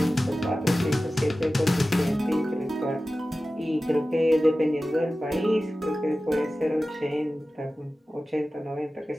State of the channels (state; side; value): normal; both; correlation 0.95